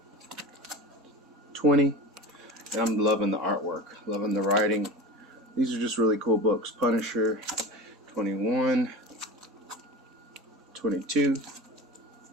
20, and I'm loving the artwork, loving the writing. These are just really cool books. Punisher 21, 22,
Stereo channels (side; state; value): both; normal; correlation 0.31